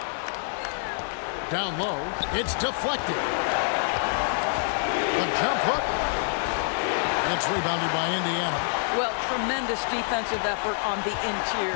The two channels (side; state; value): right; silent; digital silence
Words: Down low. It's deflected. A jump hook. It's rebounded by Indiana. Well, tremendous defensive effort on the